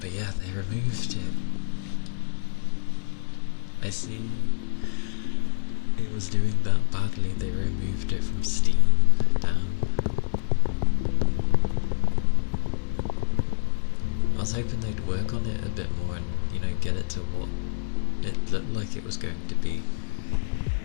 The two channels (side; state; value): right; silent; digital silence